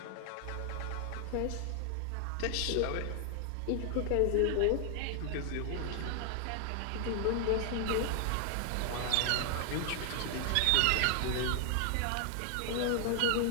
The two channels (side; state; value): both; different; correlation 0.00